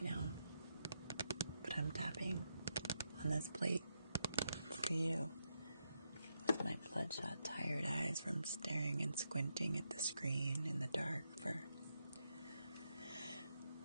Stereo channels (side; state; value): both; inverted; correlation -0.83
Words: now. But I'm tapping on this plate for you. With my bloodshot, tired eyes from staring and squinting at the screen in the dark for